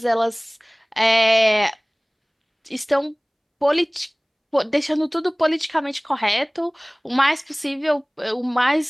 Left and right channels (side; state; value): both; identical; correlation 1.00